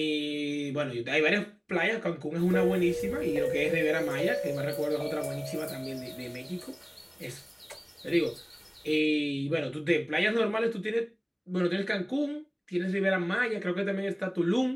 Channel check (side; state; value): both; identical; correlation 1.00